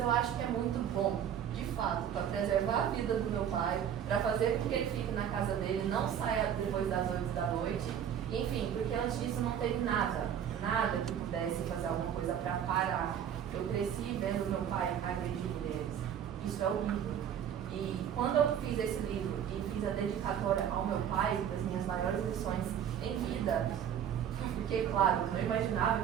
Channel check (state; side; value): quieter; left; 9.2 dB